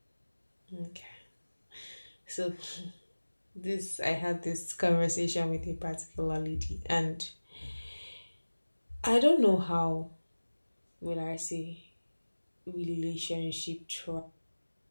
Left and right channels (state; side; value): inverted; both; correlation -1.00